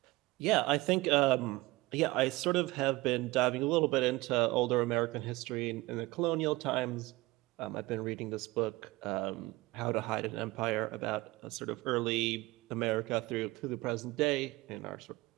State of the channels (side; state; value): left; quieter; 21.0 dB